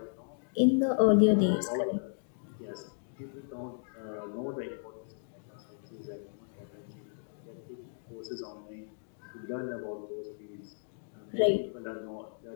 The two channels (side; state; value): right; silent; digital silence